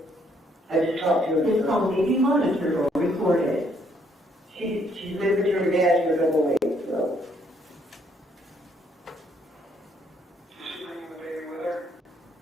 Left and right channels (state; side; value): normal; both; correlation 0.69